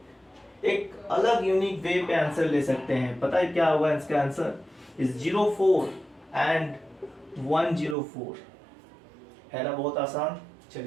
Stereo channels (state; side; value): drops out; left; at 8.0 s